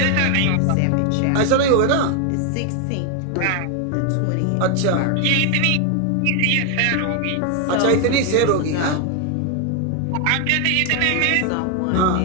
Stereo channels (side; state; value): both; different; correlation 0.01